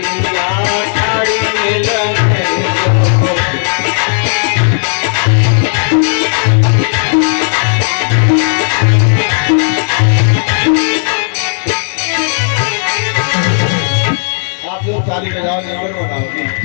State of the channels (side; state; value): right; silent; digital silence